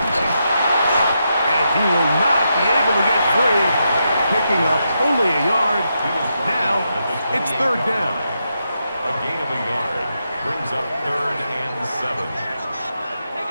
And he will not be able to get free. Picking up only a yard. Now it's 3rd down. A gain of a yard brings up 3rd and 7.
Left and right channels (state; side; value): inverted; both; correlation -0.84